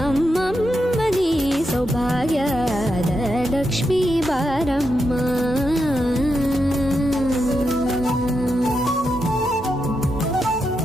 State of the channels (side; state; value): both; normal; correlation 0.85